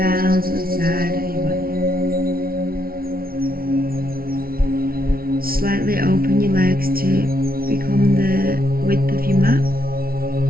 to the side of your body. Slightly open your legs to become the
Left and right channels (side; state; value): left; late; 0.43 ms